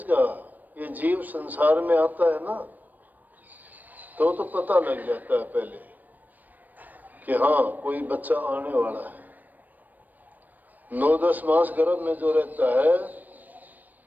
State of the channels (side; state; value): left; late; 0.086 ms